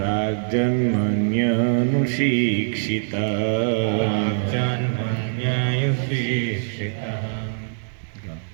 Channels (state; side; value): silent; left; digital silence